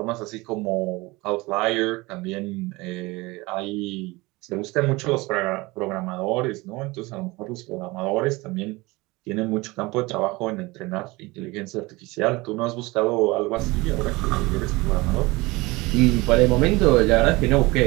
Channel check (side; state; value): left; quieter; 22.7 dB